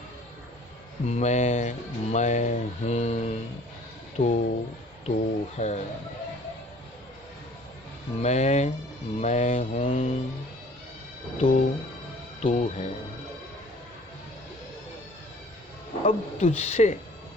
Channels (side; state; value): both; normal; correlation 0.52